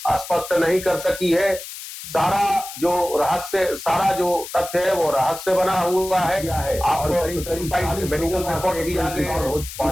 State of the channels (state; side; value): noise; left; hiss, 11 dB below the sound